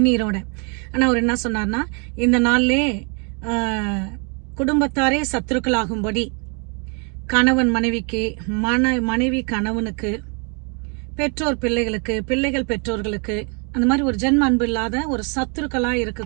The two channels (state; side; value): quieter; left; 36.3 dB